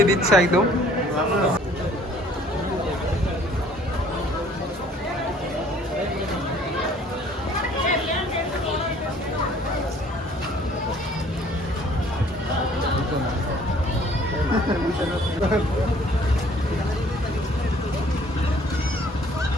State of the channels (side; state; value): both; normal; correlation 0.56